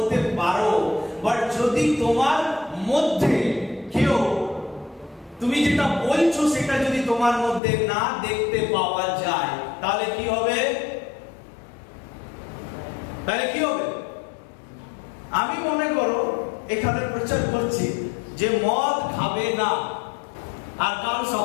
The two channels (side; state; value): right; drops out; at 7.6 s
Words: পারো, বাট যদি তোমার মধ্যে কেউ তুমি যেটা বলছো সেটা যদি তোমার মধ্যে না দেখতে পাওয়া যায়, তাহলে কি হবে? আমি মনে করো এখানে প্রচার করছি যে মদ খাবে না, আর কাল